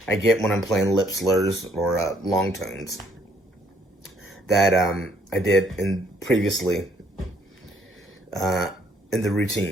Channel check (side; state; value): both; normal; correlation 0.66